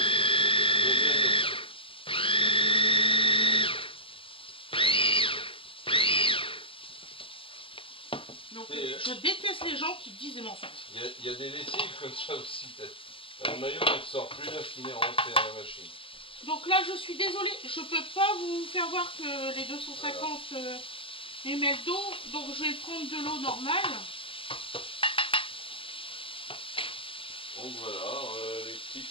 Donc, je déteste les gens qui disent des mensonges. Il y a des lessives comme ça aussi, peut-être. Le maillot ne sort plus là qu'il est rentré dans la machine. Donc là, je suis désolée, je peux pas vous faire voir que les 250 ml d'eau, donc je vais prendre de l'eau normale. Donc voilà, les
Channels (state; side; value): late; right; 0.26 ms